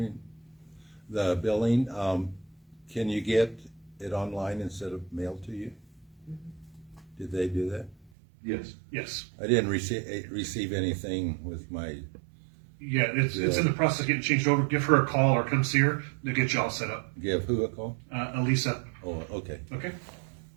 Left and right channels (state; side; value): drops out; left; at 8.1 s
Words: the billing? Can you get it online instead of mailed to you? Did they do that? Yes. Yes. I didn't receive anything with my. Yeah, it's in the process of getting changed over. Give her a call or come see her. They'll get you all set up. Give who a call? Elisa. Oh, okay. Okay.